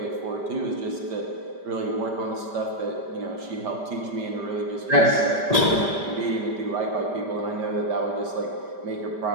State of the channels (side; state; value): left; late; 5.1 ms